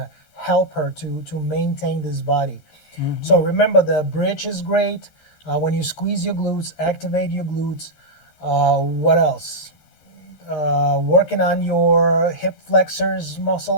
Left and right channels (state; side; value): late; right; 13 ms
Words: help her to maintain this body. So remember, the bridge is great. When you squeeze your glutes, activate your glutes. What else? Working on your hip flexors